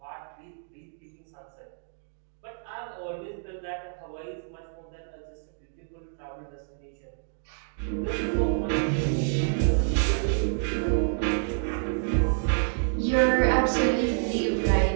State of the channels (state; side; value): silent; left; digital silence